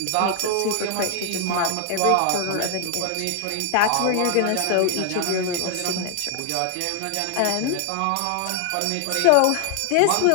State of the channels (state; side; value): different; both; correlation 0.00